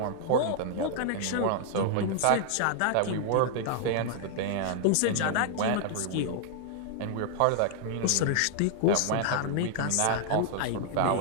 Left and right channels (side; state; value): both; different; correlation -0.01